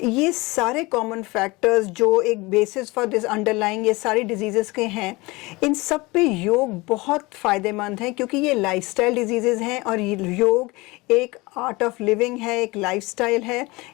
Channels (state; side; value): quieter; right; 23.2 dB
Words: ये सारे कॉमन फैक्टर्स जो एक बेसिस फॉर दिस अंडरलाइंग ये सारी डिजीज़ेस के हैं, इन सब पे योग बहुत फ़ायदेमंद है, क्योंकि ये लाइफस्टाइल डिजीज़ेस हैं और योग एक आर्ट ऑफ लिविंग है, एक लाइफस्टाइल है,